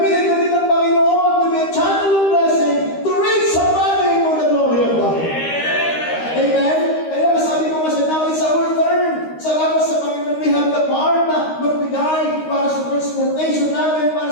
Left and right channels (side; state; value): right; late; 13 ms